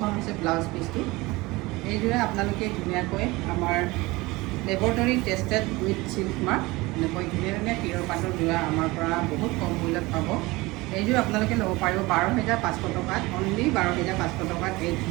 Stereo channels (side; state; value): left; quieter; 21.8 dB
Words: হৈছে ব্লাউজ পিচটো। এইযোৰে আপোনালোকে ধুনীয়াকৈ আমাৰ laboratory tested with silk mark এনেকৈ ধুনীয়া ধুনীয়া পিয়ৰ পাটৰ যোৰা আমাৰ পৰা বহুত কম মূল্যত পাব। এইযোৰ আপোনালোকে ল'ব পাৰিব 12,500 টকাত, অনলি 12,500 টকাত এই